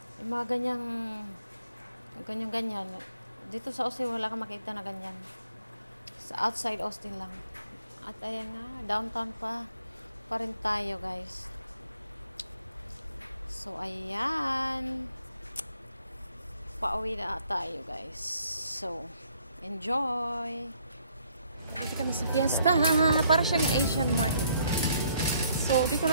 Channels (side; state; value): both; inverted; correlation -0.67